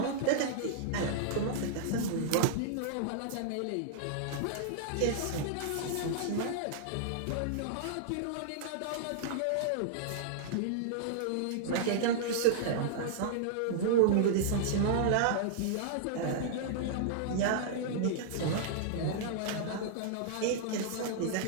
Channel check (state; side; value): different; both; correlation -0.02